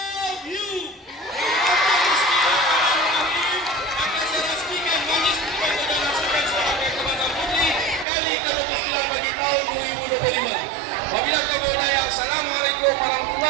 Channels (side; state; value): left; drops out; at 8.1 s